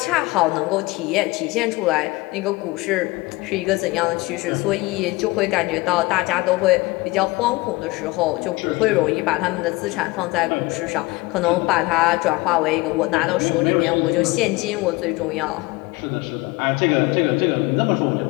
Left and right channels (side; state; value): right; quieter; 22.2 dB